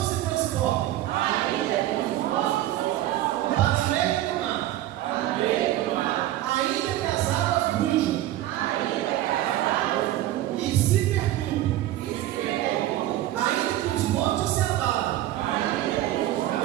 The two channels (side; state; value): left; quieter; 14.3 dB